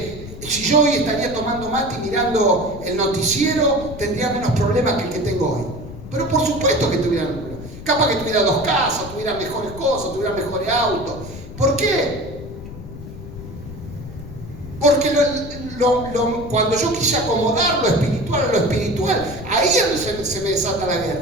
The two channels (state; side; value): noise; left; rumble, 12 dB below the sound